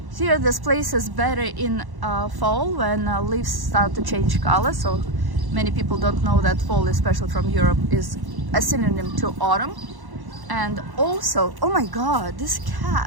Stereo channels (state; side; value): late; left; 1.1 ms